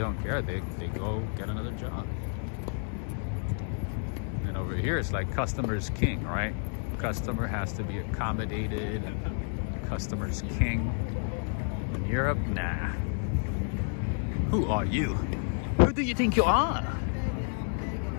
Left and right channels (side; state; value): right; silent; 57 dB below the other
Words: don't care. They go get another job. And over here, it's like customer's king, right? Customer has to be accommodated, and customer's king. In Europe, nah. Who are you? Who do you think you are?